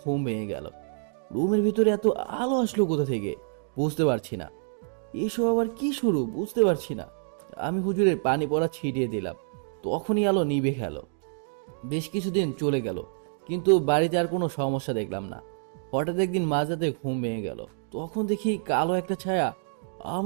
ভেঙে গেল। রুমের ভিতরে এত আলো আসলো কোথা থেকে বুঝতে পারছি না। এসব আবার কি শুরু বুঝতে পারছি না। আমি হুজুরের পানি পড়া ছিটিয়ে দিলাম, তখনই আলো নিভে গেল। বেশ কিছুদিন চলে গেল, কিন্তু বাড়িতে আর কোনো সমস্যা দেখলাম না। হঠাৎ একদিন মাঝরাতে ঘুম ভেঙে গেল। তখন দেখি কালো একটা ছায়া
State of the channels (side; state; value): left; silent; digital silence